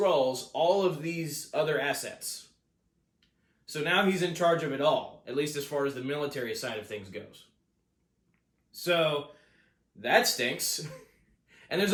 all of these other assets. So now he's in charge of it all, at least as far as the military side of things goes. So that stinks. And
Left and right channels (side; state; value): both; identical; correlation 1.00